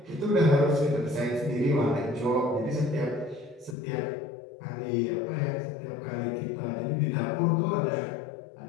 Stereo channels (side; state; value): right; drops out; at 3.8 s